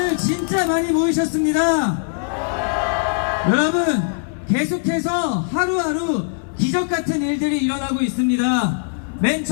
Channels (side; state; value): right; silent; 65 dB below the other